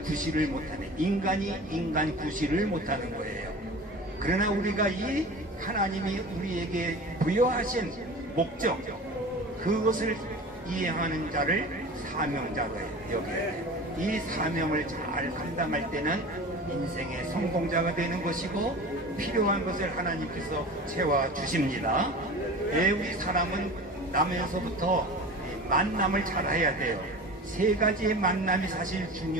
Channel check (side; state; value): both; normal; correlation 0.36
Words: 못하는, 인간이 인간 구실을 못하는 거예요. 그러나 우리가 이 하나님이 우리에게 부여하신 목적, 그것을 이행하는 자를 사명자로 여겨요. 이 사명을 잘 감당할 때는 인생의 성공자가 되는 것이고 필요한 것을 하나님께서 채워주십니다. 우리 사람은 나면서부터 만남을 잘 해야 돼요. 세 가지의 만남이 사실